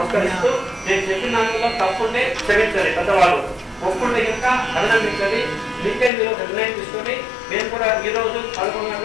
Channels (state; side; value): drops out; right; at 6.1 s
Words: నేను చెప్పిన దానిలో తప్పుంటే క్షమించాలి పెద్దవాళ్ళు ఒప్పుంటే ఇంకా అభినందించాలి మీకే మీరు నిర్ణయం తీసుకొని మేము కూడా ఈ రోజు 11